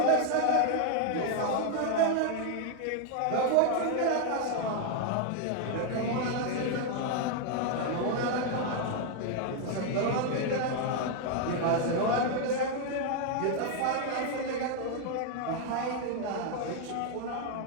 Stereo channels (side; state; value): both; different; correlation 0.00